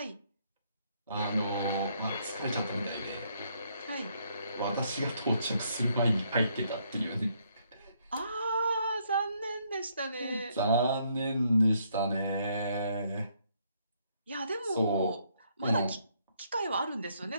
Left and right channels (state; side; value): inverted; both; correlation -0.71